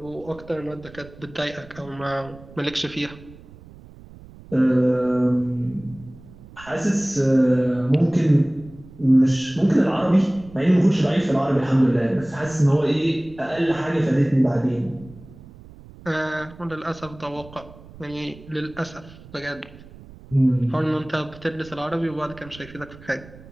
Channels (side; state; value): right; noise; rumble, 20 dB below the sound